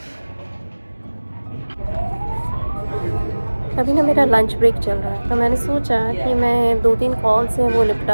अभी ना मेरा लंच ब्रेक चल रहा है, तो मैंने सोचा कि मैं 2-3 कॉल्स हैं वो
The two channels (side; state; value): both; inverted; correlation -1.00